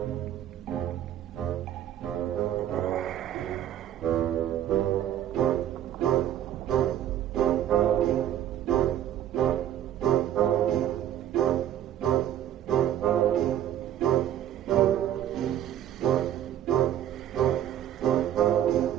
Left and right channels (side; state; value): left; quieter; 11.3 dB